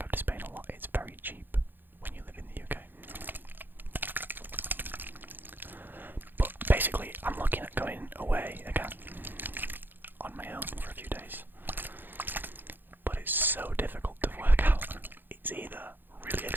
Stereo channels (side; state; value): left; late; 0.093 ms